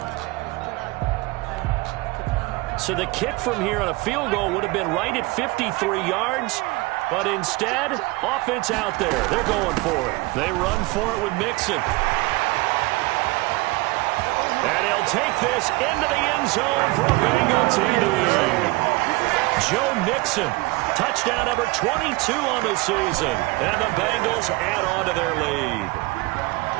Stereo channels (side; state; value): left; quieter; 23.0 dB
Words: So the kick from here on a field goal would have been right at 53 yards. But instead, offense out there. They're going for it. They run for it with Mixon. And he'll take this into the end zone for a Bengal TD. Joe Mixon, touchdown number 22 on the season. And the Bengals add on to their lead.